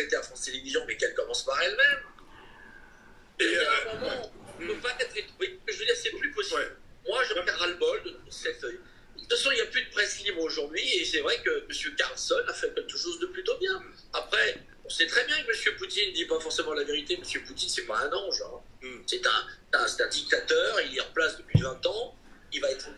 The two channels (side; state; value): both; identical; correlation 1.00